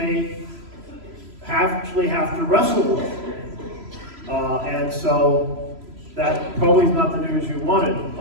actually have to wrestle with. And so that probably is not the news you wanted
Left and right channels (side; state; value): left; late; 3.0 ms